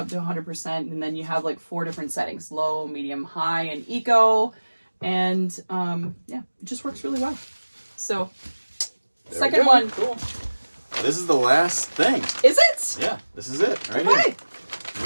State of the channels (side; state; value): both; inverted; correlation -1.00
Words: to 100%, and then you have like 4 different settings: low, medium, high, and eco. And it just works really well. So second one. Cool. This is the last thing. Is it? Yeah, this is it right here.